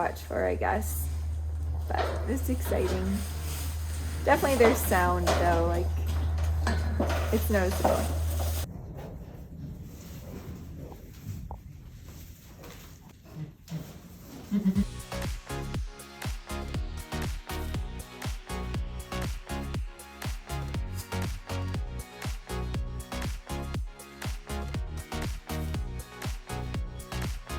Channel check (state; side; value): identical; both; correlation 1.00